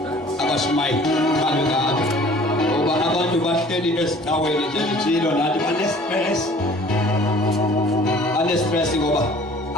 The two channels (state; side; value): normal; both; correlation 0.50